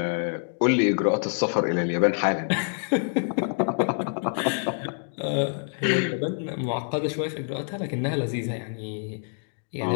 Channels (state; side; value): silent; right; 57 dB below the other